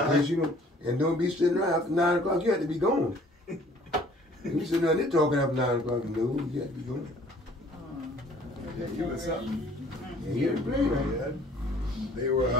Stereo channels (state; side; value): normal; both; correlation 0.55